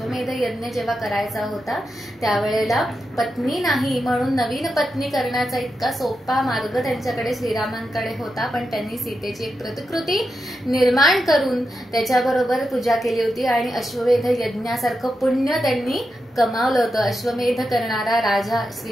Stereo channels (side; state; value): both; normal; correlation 0.88